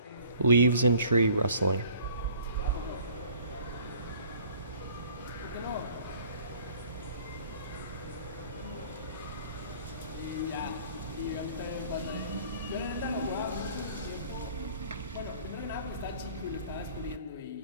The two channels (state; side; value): inverted; both; correlation -0.53